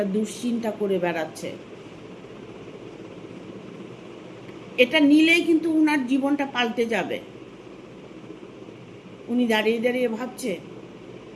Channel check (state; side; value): identical; both; correlation 1.00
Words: দুশ্চিন্তা করে বেড়াচ্ছে। এটা নিলেই কিন্তু উনার জীবনটা পাল্টে যাবে। উনি দাঁড়িয়ে দাঁড়িয়ে ভাবছে,